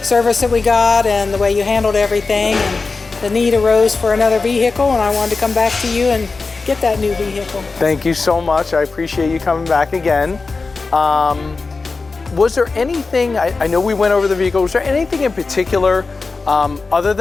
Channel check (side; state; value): right; quieter; 4.1 dB